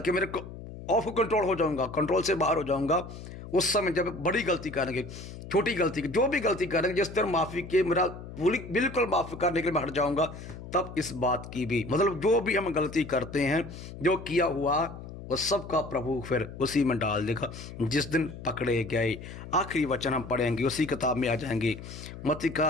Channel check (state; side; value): noise; left; hum, 12 dB below the sound